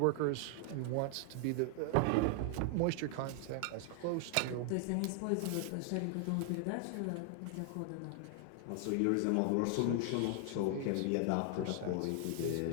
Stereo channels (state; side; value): different; both; correlation 0.00